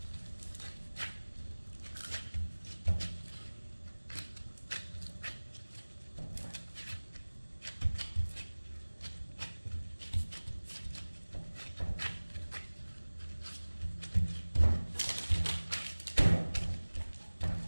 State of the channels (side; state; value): both; inverted; correlation -1.00